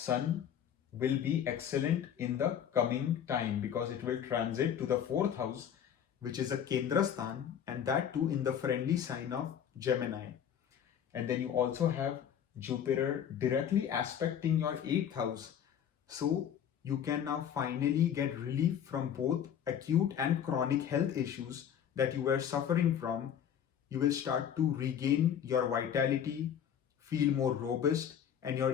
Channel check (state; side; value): quieter; right; 9.0 dB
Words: will be excellent in the coming time, because it will transit to the 4th house, which is a Kendra Sthan, and that too in the friendly sign of Gemini. And then you also have Jupiter directly aspecting your 8th house. So you can now finally get relief from both acute and chronic health issues that you were suffering from. You will start to regain your vitality, feel more robust, and your